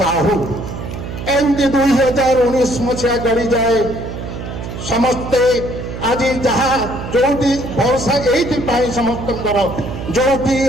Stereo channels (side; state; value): right; noise; hum, 8 dB below the sound